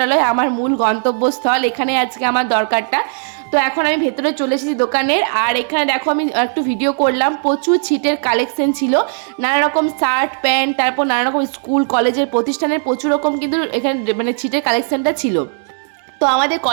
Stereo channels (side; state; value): left; silent; digital silence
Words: আমার মূল গন্তব্যস্থল। এখানে আজকে আমার দরকারটা। তো এখন আমি ভেতরে চলে এসেছি দোকানের। আর এখানে দেখো আমি একটু ভিডিও করলাম, প্রচুর ছিটের কালেকশন ছিল, নানা রকম শার্ট প্যান্ট, তারপর নানা রকম স্কুল কলেজের প্রতিষ্ঠানের প্রচুর রকম কিন্তু এখানে মানে ছিটের কালেকশনটা ছিল। তো আমাদের